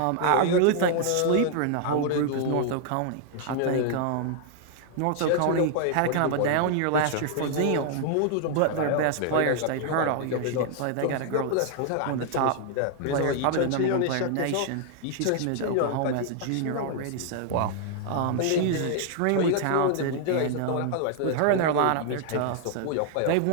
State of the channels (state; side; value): different; both; correlation 0.00